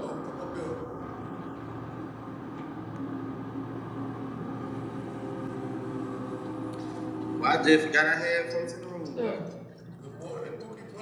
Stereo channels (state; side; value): identical; both; correlation 1.00